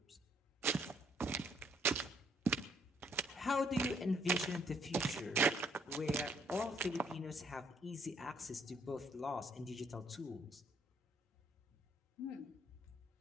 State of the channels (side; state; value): both; normal; correlation 0.66